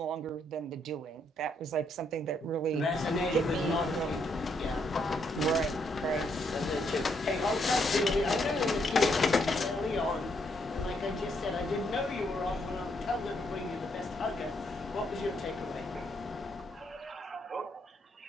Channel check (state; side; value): normal; both; correlation 0.74